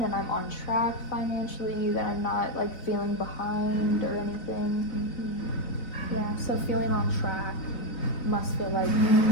and I'm on track financially, that I'm not like feeling behind or anything. Mm-hmm. Yeah, so feeling on track must feel like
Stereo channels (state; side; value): late; right; 4.0 ms